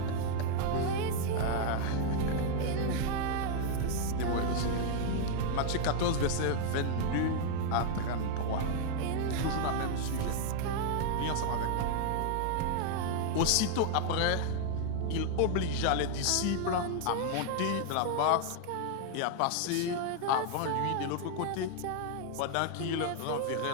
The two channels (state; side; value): different; both; correlation 0.00